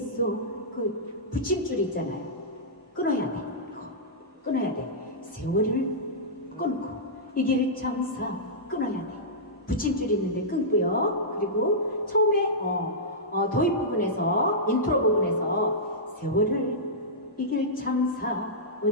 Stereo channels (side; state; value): both; normal; correlation -0.14